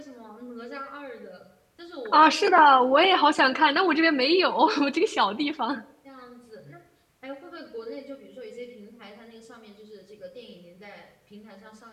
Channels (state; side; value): identical; both; correlation 1.00